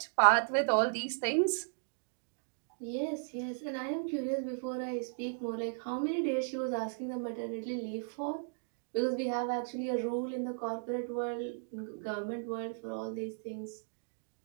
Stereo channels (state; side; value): silent; left; digital silence